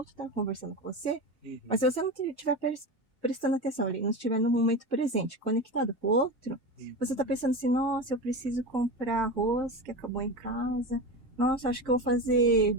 está conversando com você, Uhum. mas se você não estiver prestando atenção ali, não estiver no momento presente, conectado com o outro, você está pensando assim, nossa, eu preciso comprar arroz que acabou em casa, nossa, acho que eu vou fazer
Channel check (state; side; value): normal; both; correlation 0.24